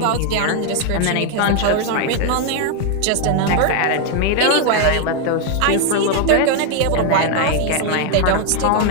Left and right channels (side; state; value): both; different; correlation 0.01